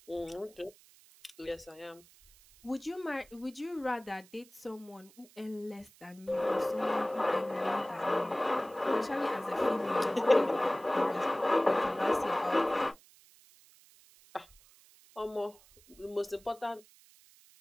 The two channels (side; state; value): right; noise; hiss, 26 dB below the sound